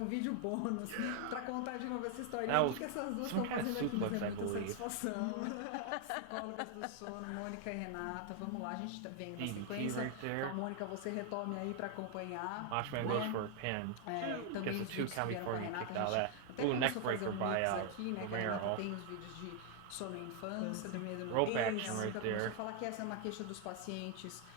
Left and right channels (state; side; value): different; both; correlation 0.00